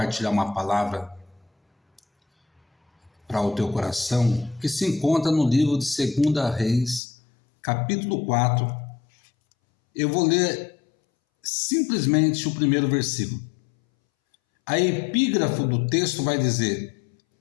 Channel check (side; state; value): right; drops out; at 7.0 s